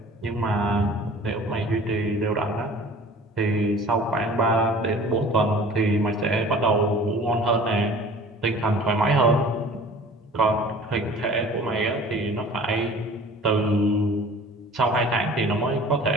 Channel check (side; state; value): both; normal; correlation 0.45